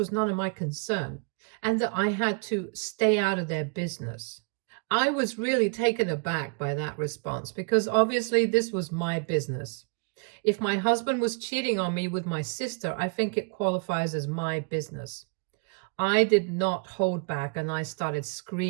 none of my concern and that I had to stay out of their business. I was really taken aback by that response because obviously this was my business. If my husband was cheating on me with my sister, I think it qualifies as my business. I did not hold back and I started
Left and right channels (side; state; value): left; quieter; 36.3 dB